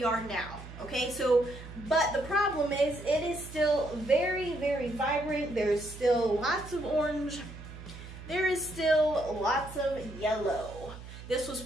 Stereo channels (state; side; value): noise; right; hum, 14 dB below the sound